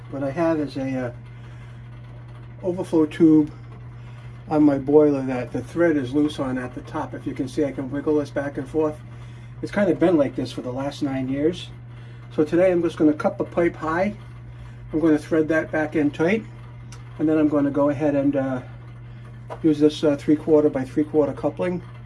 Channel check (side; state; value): both; identical; correlation 1.00